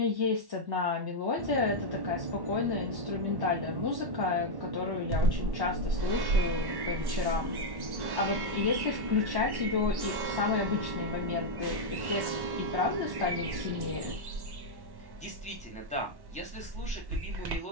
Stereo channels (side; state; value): left; late; 1.1 ms